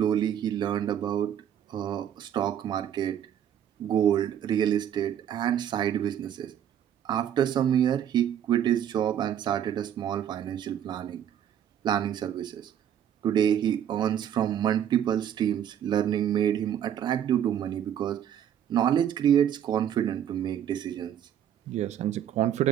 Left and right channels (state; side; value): quieter; left; 9.9 dB